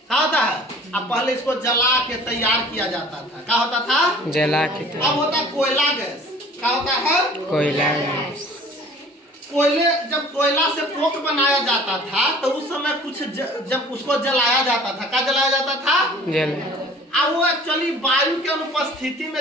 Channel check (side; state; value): both; normal; correlation 0.48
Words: क्या होता है, अब पहले इसको जला के तैयार किया जाता था। क्या होता था, जला के। अब होता है कोयला गैस। क्या होता है, कोयला गैस। कोयले, जब कोयला से कोक बनाया जाता था तो उस समय कुछ जब उसको जलाया जाता था, क्या जलाया जाता था, जल। अब वो एक्चुअली वायु के अनुपस्थिति